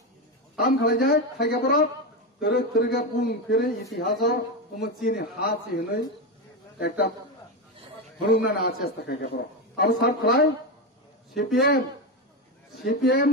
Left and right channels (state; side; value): normal; both; correlation 0.13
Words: তাম খেলাই যায় খাইকে বরফ তেরে তেরেগা বুং ফেরে ইতিহাস উম চিনি হাসি হনই একটা হরুনা না আছে খাইকে বরফ আর সব খেলাই সিপিএম